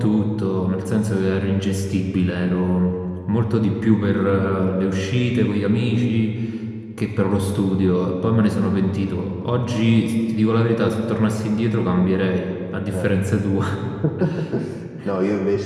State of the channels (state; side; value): identical; both; correlation 1.00